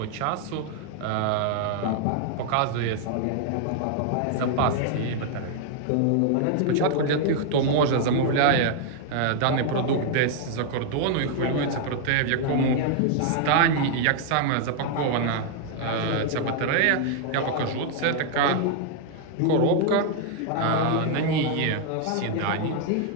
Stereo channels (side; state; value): both; different; correlation 0.00